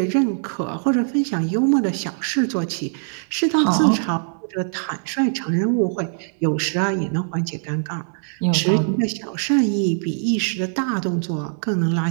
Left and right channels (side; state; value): left; silent; digital silence